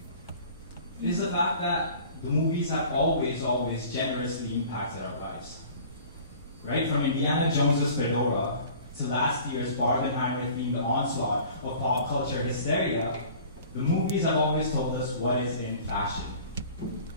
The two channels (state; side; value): inverted; both; correlation -0.46